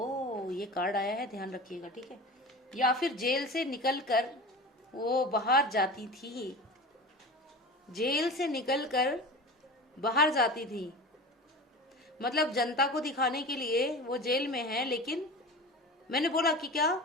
ये कार्ड आया है, ध्यान रखिएगा, ठीक है, या फिर जेल से निकल कर वो बाहर जाती थी, जेल से निकलकर बाहर जाती थी। मतलब जनता को दिखाने के लिए वो जेल में है, लेकिन मैंने बोला कि क्या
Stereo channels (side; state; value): both; normal; correlation 0.33